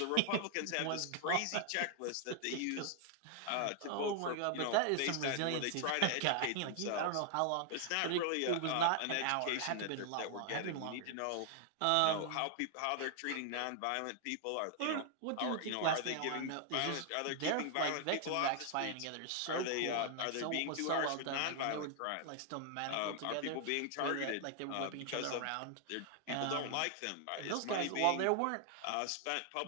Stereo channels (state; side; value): different; both; correlation 0.00